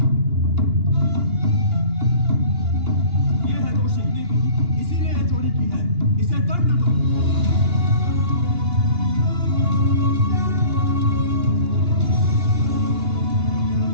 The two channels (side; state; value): left; late; 2.8 ms